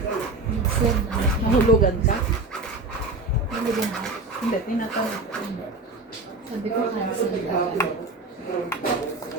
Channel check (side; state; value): left; quieter; 3.2 dB